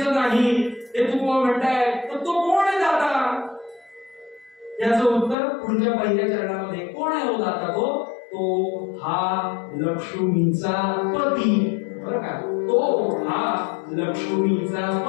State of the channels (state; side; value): drops out; right; at 5.4 s